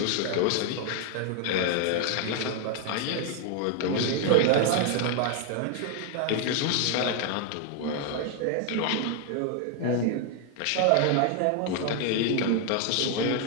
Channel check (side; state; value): both; different; correlation 0.00